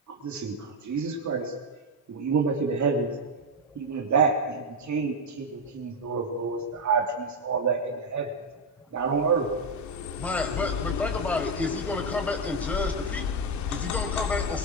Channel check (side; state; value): both; normal; correlation 0.06